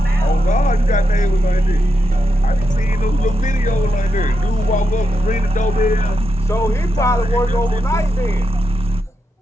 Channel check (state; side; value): normal; both; correlation 0.86